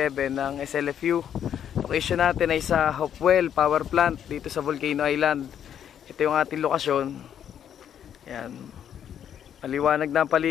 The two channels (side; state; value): right; quieter; 9.3 dB